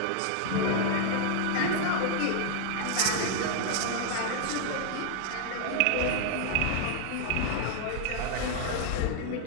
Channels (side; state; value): both; different; correlation 0.00